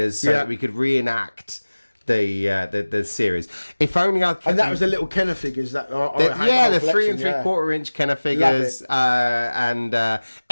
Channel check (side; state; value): both; inverted; correlation -1.00